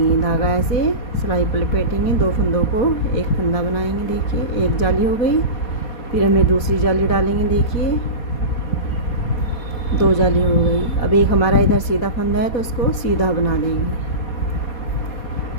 धागा ऐसे सिलाई पर लपेटेंगे, 2 फंदों को एक फंदा बनाएंगे। देखिए एक जाली हो गई, फिर हमें दूसरी जाली डालेंगे। देखिए 2 जाली हो गई। अब एक हमारा इधर सीधा फंदा है तो उसको सीधा बना देंगे।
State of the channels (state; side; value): late; right; 4.2 ms